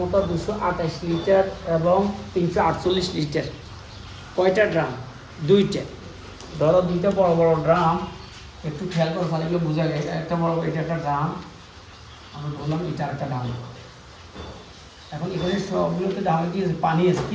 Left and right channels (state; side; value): identical; both; correlation 1.00